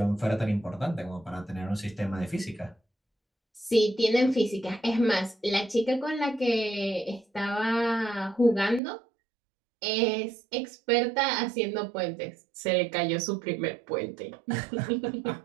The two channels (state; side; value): drops out; left; at 8.8 s